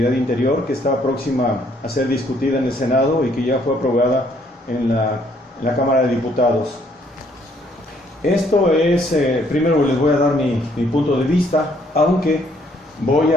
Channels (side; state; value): both; normal; correlation 0.66